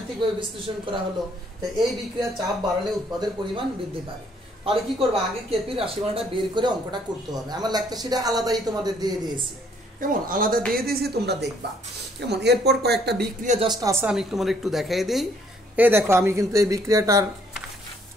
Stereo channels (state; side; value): normal; both; correlation 0.65